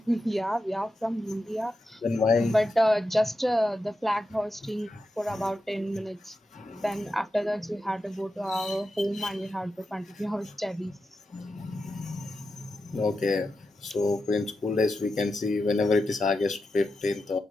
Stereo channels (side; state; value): both; normal; correlation 0.89